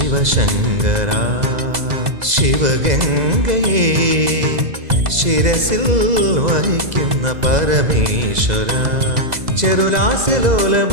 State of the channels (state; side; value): late; left; 2.0 ms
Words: ശിവഗംഗയെ ശിരസിൽ വഹിക്കുന്ന പരമേശ്വര,